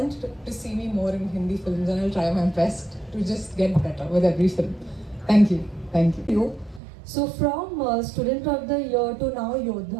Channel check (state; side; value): drops out; left; at 6.8 s